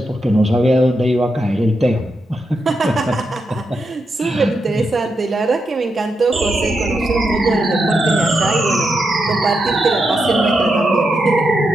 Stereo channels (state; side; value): normal; both; correlation 0.85